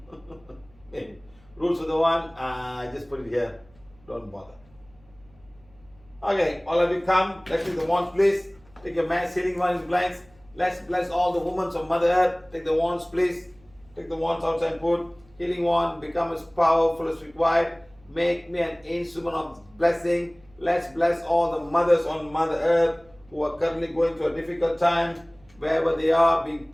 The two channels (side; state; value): right; noise; hum, 29 dB below the sound